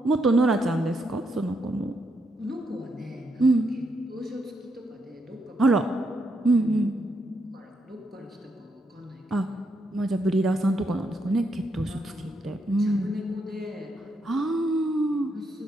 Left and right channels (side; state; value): both; normal; correlation 0.79